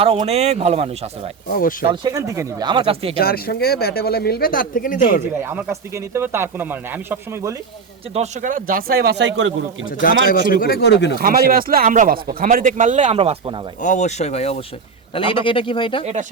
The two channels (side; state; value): left; quieter; 5.4 dB